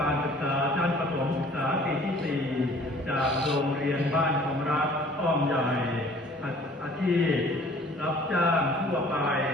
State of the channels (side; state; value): both; normal; correlation 0.52